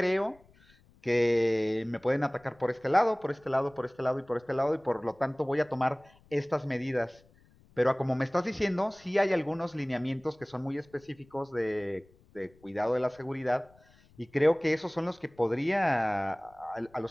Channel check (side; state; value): left; noise; rumble, 29 dB below the sound